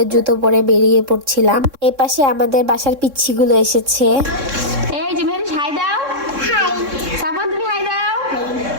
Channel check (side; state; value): left; late; 3.6 ms